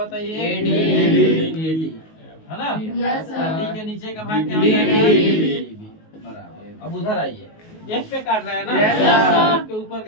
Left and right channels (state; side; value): late; right; 19 ms